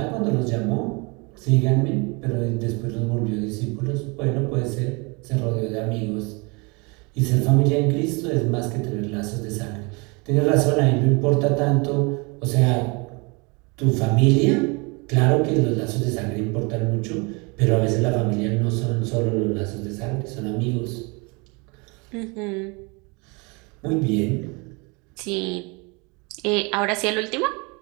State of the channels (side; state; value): left; quieter; 29.4 dB